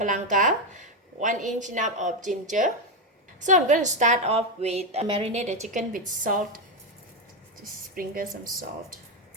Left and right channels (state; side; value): normal; both; correlation 0.08